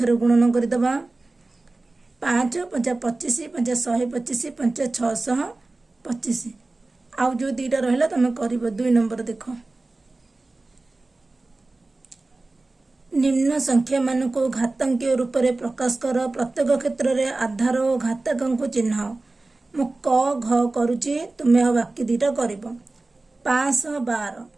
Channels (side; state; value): left; quieter; 3.2 dB